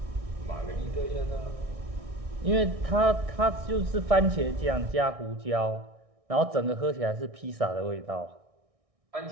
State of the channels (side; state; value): left; late; 1.6 ms